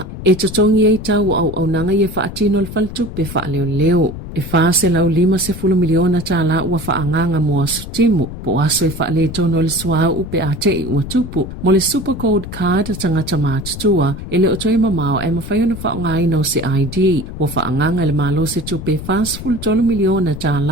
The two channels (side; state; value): left; noise; rumble, 10 dB below the sound